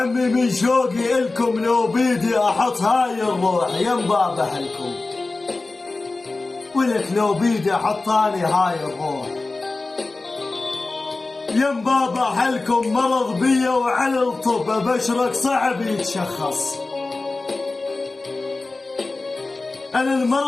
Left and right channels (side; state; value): right; quieter; 3.4 dB